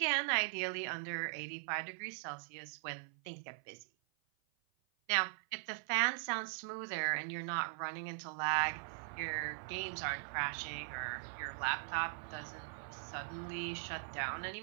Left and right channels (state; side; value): silent; left; 51 dB below the other